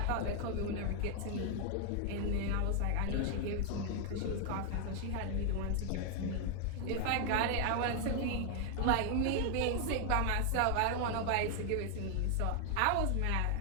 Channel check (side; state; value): both; different; correlation 0.00